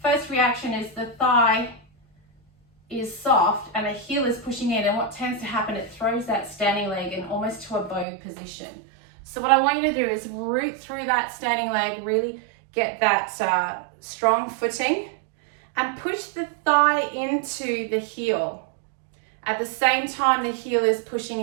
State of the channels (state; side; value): drops out; left; at 8.1 s